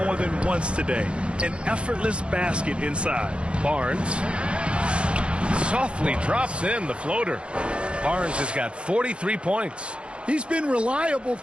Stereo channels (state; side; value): late; left; 0.057 ms